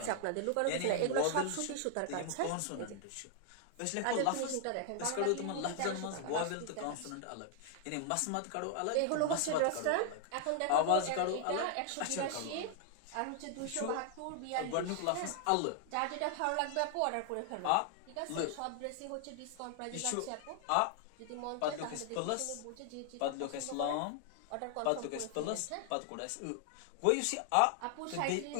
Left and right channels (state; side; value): different; both; correlation 0.00